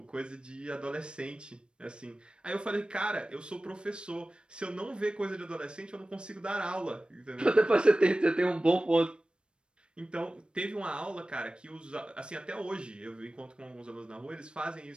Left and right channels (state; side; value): late; left; 0.054 ms